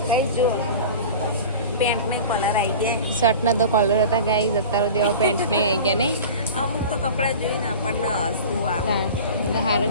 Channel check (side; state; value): both; inverted; correlation -0.36